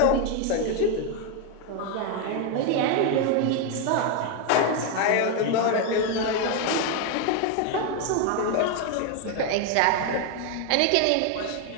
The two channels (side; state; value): both; different; correlation 0.01